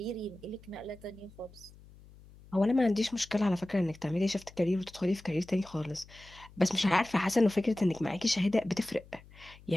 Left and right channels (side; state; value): left; noise; hum, 22 dB below the sound